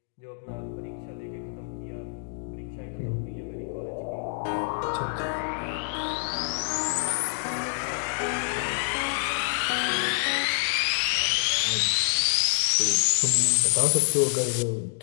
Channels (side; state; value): right; silent; digital silence